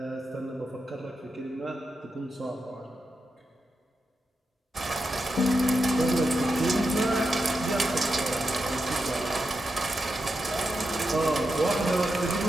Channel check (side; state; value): both; normal; correlation 0.87